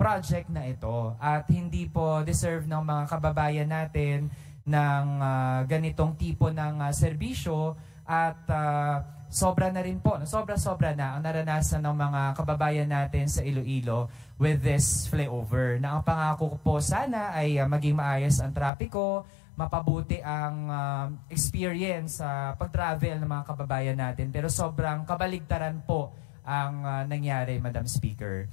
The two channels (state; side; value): drops out; right; at 18.7 s